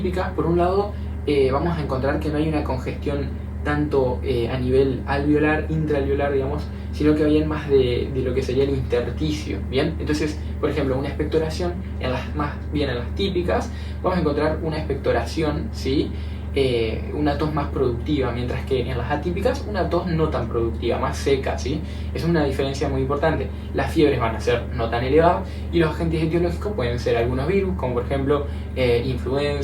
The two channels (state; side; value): identical; both; correlation 1.00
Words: por un lado vamos a encontrar que no hay una congestión tanto a nivel alveolar, intraalveolar, digamos, sino que bien más de lo que sería el intersticio, ¿bien? Entonces, por ejemplo, una expectoración, más bien en las típicas, vamos a encontrar una expectoración, ¿sí?, una tos más productiva, mientras que en las atípicas una tos no tan productiva, más seca, ¿sí? Es una diferencia muy importante. Las fiebres van a ser no tan elevadas y los agentes etiológicos pueden ser algunos virus, como por ejemplo